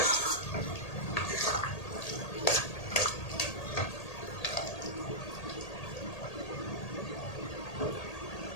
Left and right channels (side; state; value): right; late; 1.8 ms